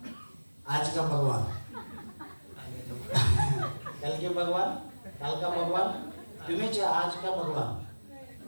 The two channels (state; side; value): inverted; both; correlation -1.00